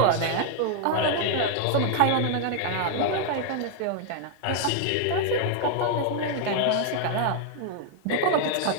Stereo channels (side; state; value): both; different; correlation 0.00